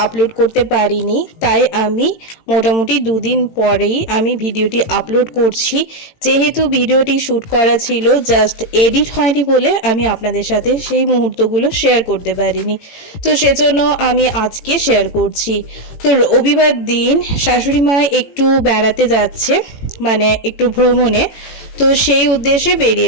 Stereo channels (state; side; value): late; right; 18 ms